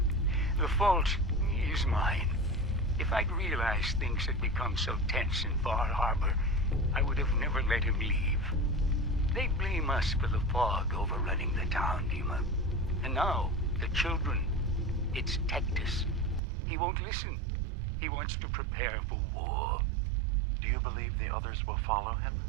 The fault is mine. If I'd realized things had become so tense in Far Harbor, I would have never let him leave. They blame us for the fog overrunning the town, Dima. And now, the children. It's Tectus. He won't listen. He wants to prepare for war. Do you believe the others will follow him?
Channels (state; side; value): drops out; left; at 16.4 s